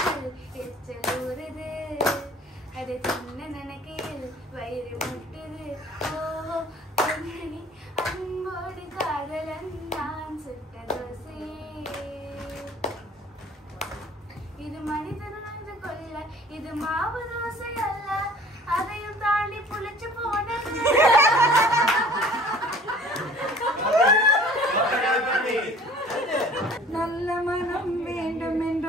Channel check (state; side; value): normal; both; correlation 0.50